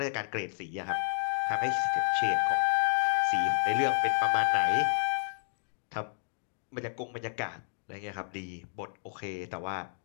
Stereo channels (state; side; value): silent; right; digital silence